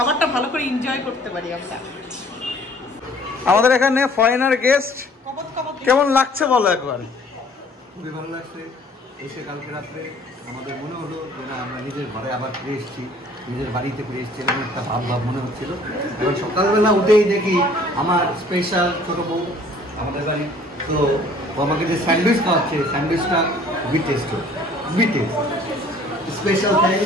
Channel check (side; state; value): both; normal; correlation 0.55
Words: ভালো করে এনজয় করতে পারি আমরা। আমাদের এখানে ফরেনার গেস্ট, কেমন লাগছে বলো একবার? খুবই ভালো লাগছে এসে। কালকে রাত্রে আমাদের মনে হলো যে না, আমরা নিজের ঘরে আবার ফিরে এসেছি, নিজের বাড়িতে ফিরে এসেছি, এরকম একটা ভাব মনে হচ্ছিল। এবং সকালবেলা উঠেই দেখি আমার স্পেশাল ছোটো বউ আমাদের বাড়ি, তো আমাকে যে স্যান্ডউইচ খাওয়াচ্ছে, স্যান্ডউইচটা খুবই টেস্ট, খুবই টেস্ট। Special